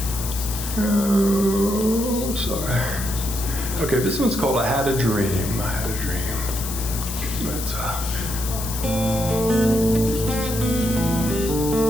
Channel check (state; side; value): noise; left; hiss, 7 dB below the sound